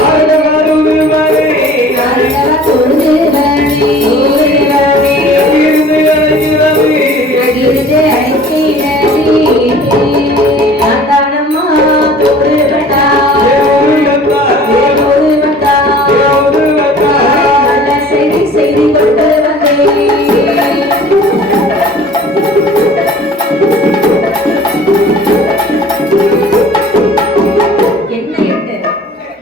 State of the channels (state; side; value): normal; both; correlation 0.48